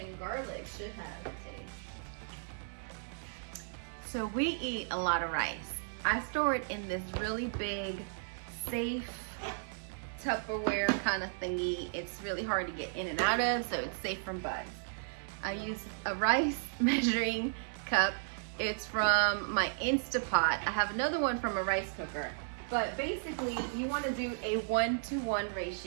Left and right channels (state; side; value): silent; left; digital silence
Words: and garlic should have taste. So we eat a lot of rice. I store it in this really big, safe Tupperware kind of thingy. It's really hard to get in and out of, so it's safe from bugs. I use a rice measuring cup. It's from my Instapot. I have another one from a rice cooker. But basically, you want to do a 1-to-1